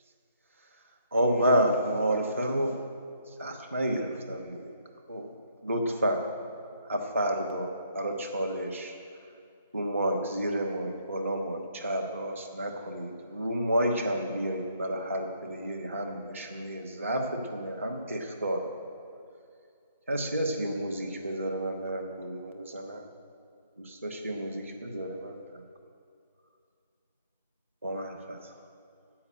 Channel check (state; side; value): inverted; both; correlation -0.68